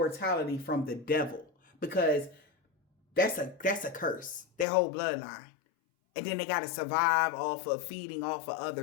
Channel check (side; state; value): right; drops out; at 4.7 s